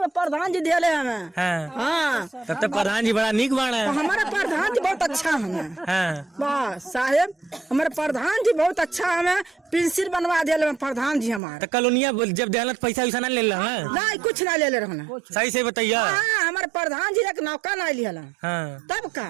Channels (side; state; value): left; drops out; at 11.4 s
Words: में प्रधान जी दिया हमें। हाँ, हाँ, तब तक प्रधान जी बड़ा नीक बाण है। हमारा प्रधान जी बहुत अच्छा हमें। हाँ, वाह साहेब, हमारे प्रधान जी बहुत अच्छा हमें पेंसिल बनवा दिया प्रधान जी हमारे। तो कॉलोनिया जब देहलत पैसा वैसा ना ले ला? नहीं, कुछ ना ले रहना। सही से बताइए। हाँ, हमारे प्रधान जी एक नौका ना लिया। हाँ, तब का